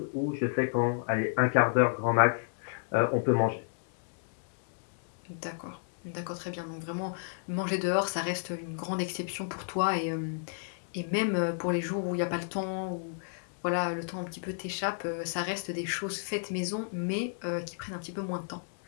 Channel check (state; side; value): silent; right; digital silence